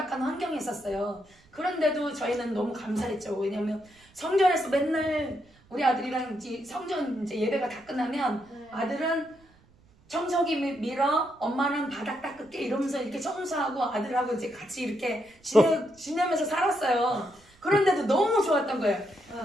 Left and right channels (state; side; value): noise; right; rumble, 30 dB below the sound